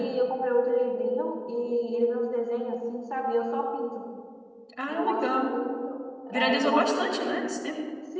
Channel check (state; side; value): identical; both; correlation 1.00